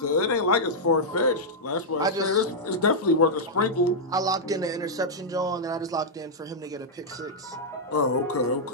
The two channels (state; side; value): normal; both; correlation -0.07